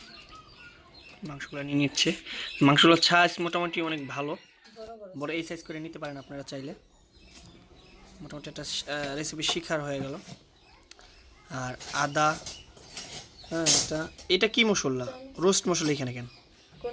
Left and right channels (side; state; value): both; identical; correlation 1.00